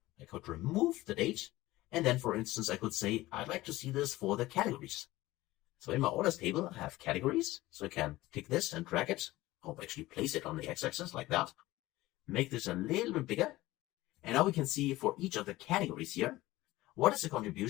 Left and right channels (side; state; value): right; quieter; 17.8 dB